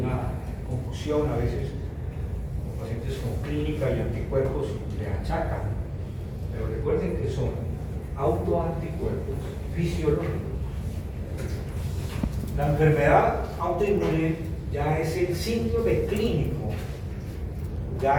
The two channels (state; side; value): identical; both; correlation 1.00